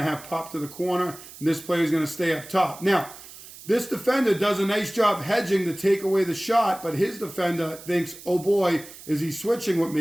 have pop to the corner, and this player is going to stay up top. Now, this defender does a nice job hedging to take away the shot, but his defender thinks, oh boy, is he switching with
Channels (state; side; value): noise; right; hiss, 17 dB below the sound